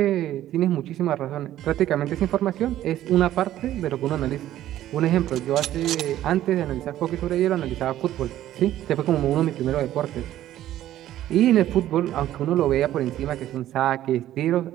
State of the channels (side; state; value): left; quieter; 13.0 dB